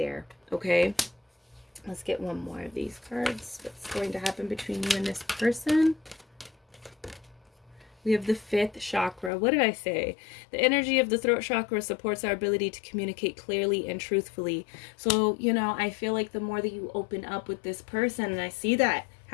Okay, let's get one more of these cards. What's going to happen between you and this person? We have the 5th chakra. What did I say? The energy of the throat chakra supports our ability to communicate clearly and truthfully. So, you know, I feel like the more that you open up with this person, and I see that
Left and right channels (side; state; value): right; drops out; at 9.3 s